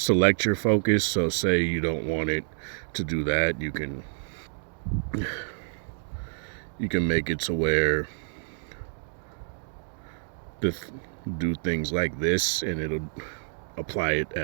your focus. So say you don't want it to do that. You can make it to where do things like this and it'll apply it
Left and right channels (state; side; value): silent; left; digital silence